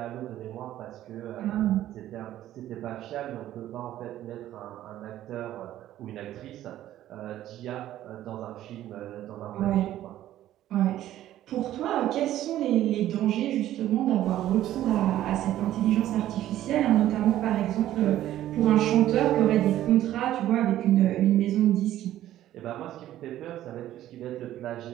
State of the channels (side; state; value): left; quieter; 13.1 dB